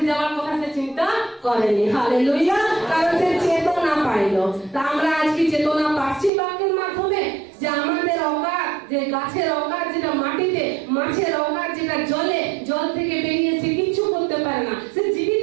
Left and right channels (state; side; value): drops out; left; at 6.3 s